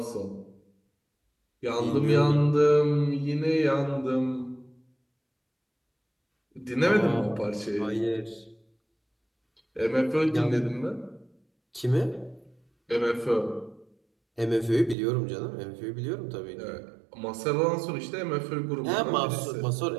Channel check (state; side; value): drops out; left; at 15.0 s